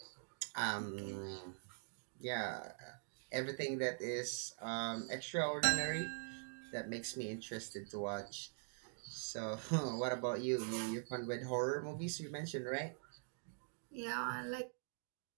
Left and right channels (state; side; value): silent; left; digital silence